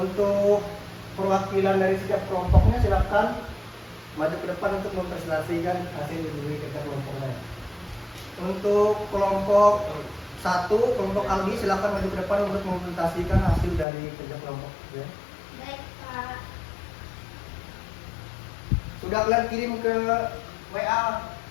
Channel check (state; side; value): drops out; right; at 13.9 s